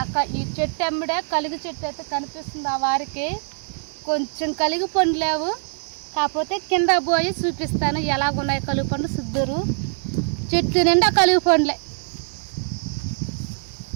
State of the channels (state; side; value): silent; left; digital silence